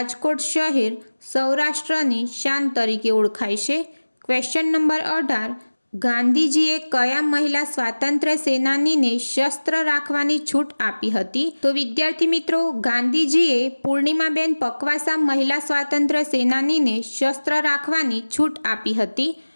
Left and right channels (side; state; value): both; inverted; correlation -1.00